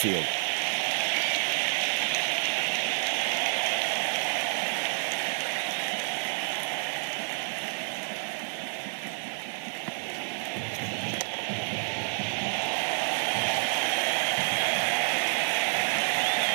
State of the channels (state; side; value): silent; left; digital silence